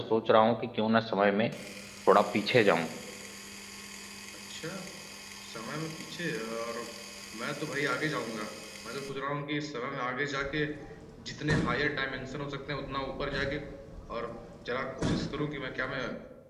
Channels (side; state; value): both; identical; correlation 1.00